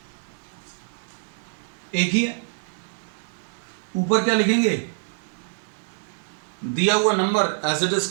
एक ही है। ऊपर क्या लिखेंगे, दिया हुआ number as it is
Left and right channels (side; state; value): left; silent; digital silence